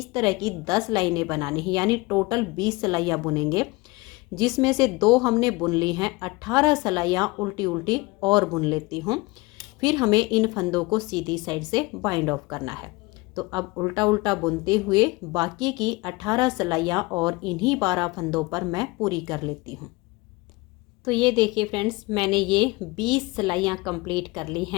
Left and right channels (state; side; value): quieter; right; 23.6 dB